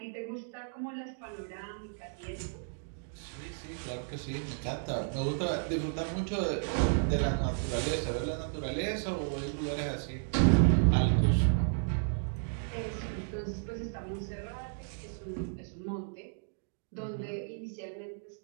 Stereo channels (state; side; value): silent; left; digital silence